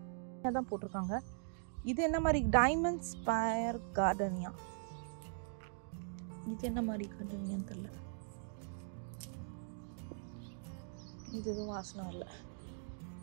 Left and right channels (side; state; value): left; silent; digital silence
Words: தான் போட்டிருக்காங்க. இது என்ன மாதிரி டைமண்ட் ஸ்பயர் கார்டனியா, இது என்ன மாதிரி கார்டனியான்னு தெரியல. இது எதுவும் வாசனை இல்லை.